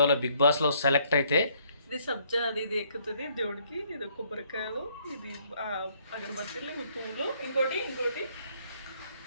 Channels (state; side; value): inverted; both; correlation -0.66